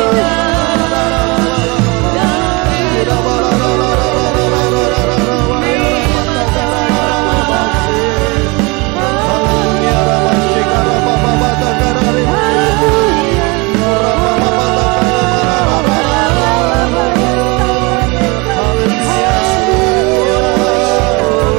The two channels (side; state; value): left; quieter; 27.4 dB